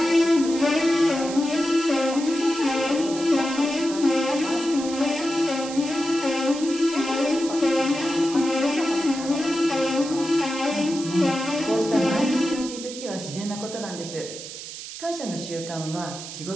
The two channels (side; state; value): right; noise; hiss, 11 dB below the sound